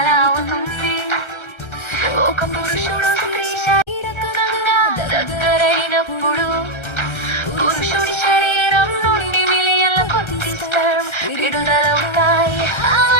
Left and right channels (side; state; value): right; late; 1.3 ms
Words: అవుతుంది. ఒక పురుషుడు స్త్రీ శారీరకంగా దగ్గరైనప్పుడు పురుషుడి శరీరం నుండి మిలియన్ల కొద్ది స్పెర్మ్ విడుదలవుతాయి.